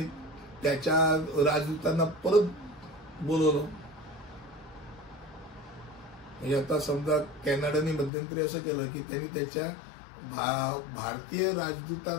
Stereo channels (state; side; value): drops out; right; at 8.1 s